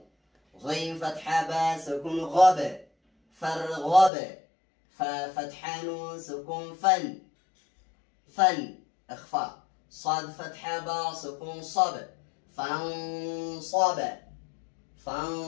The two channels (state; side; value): drops out; right; at 4.1 s